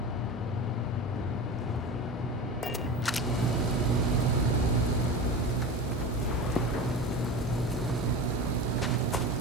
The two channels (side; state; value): both; normal; correlation 0.29